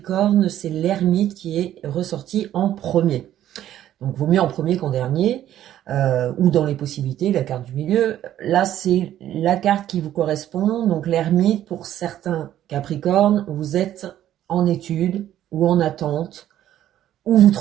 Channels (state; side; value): quieter; left; 12.0 dB